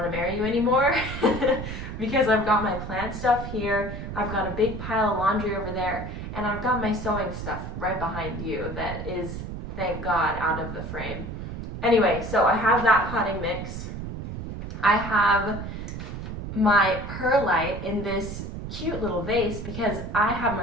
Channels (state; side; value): noise; right; rumble, 7 dB below the sound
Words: to marry you anymore because I've got my plant stuff here, I've got a big pile of laundry over there, and I've got my sewing stuff right behind you that is, thank God, out of the frame. Anyway, so I have that potting mix. I have my perlite in this cute little vase because I have